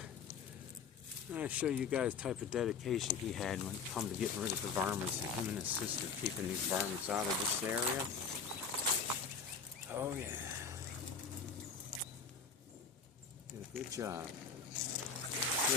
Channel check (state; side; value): quieter; right; 5.6 dB